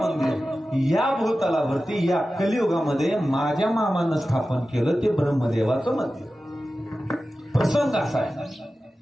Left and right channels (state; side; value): normal; both; correlation 0.94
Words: या भूतलावरती या कलियुगामध्ये माझ्या मामानं स्थापन केलं, ते ब्रह्मदेवाचं मंदिर. प्रसंग असा आहे,